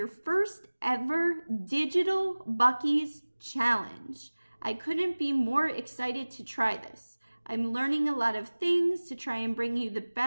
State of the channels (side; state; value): both; inverted; correlation -1.00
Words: first ever digital Bucky's challenge. I couldn't be more excited to try this. I'm learning a lot of things to try and bring you the